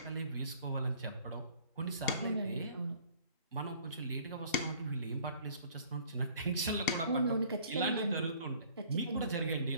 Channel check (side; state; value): both; inverted; correlation -0.54